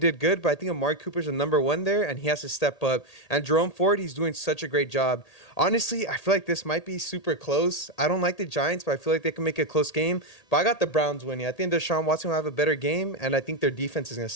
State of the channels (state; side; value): late; right; 1.8 ms